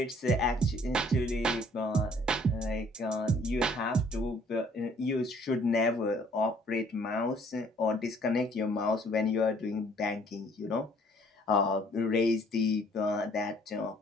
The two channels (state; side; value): normal; both; correlation 0.60